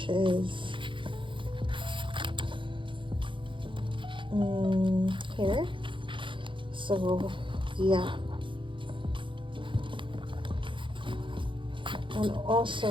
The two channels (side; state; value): left; late; 0.24 ms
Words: is here. So yeah, and also